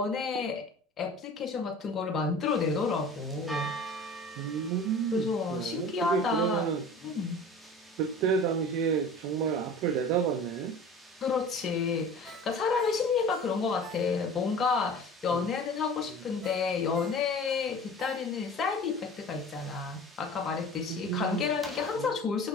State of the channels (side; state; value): both; normal; correlation 0.40